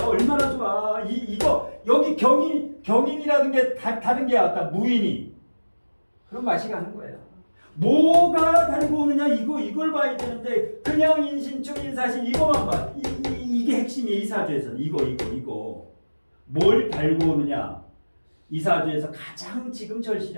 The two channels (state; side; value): inverted; both; correlation -1.00